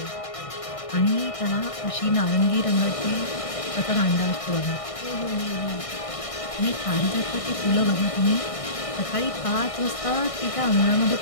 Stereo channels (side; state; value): right; late; 1.6 ms